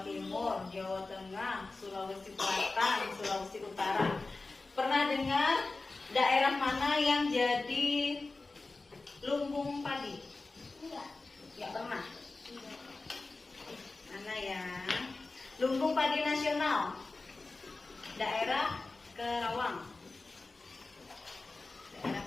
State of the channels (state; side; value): quieter; right; 3.5 dB